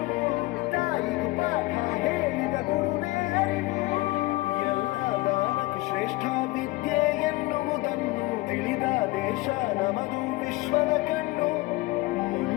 ತಾಯಿಗೆ ಪಾಠ ಹೇಳಿದ ಗುರುವೇ ಅರಿವು. ಎಲ್ಲ ದಾನಕ್ಕೆ ಶ್ರೇಷ್ಠ ವಿದ್ಯೆ ಎನ್ನುವುದನ್ನು ತಿಳಿದ ದೇಶ ನಮದು, ವಿಶ್ವದ ಕಣ್ಣು.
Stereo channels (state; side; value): quieter; right; 20.5 dB